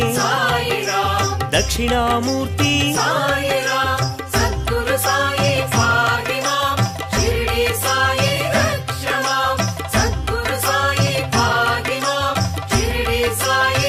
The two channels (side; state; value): both; identical; correlation 1.00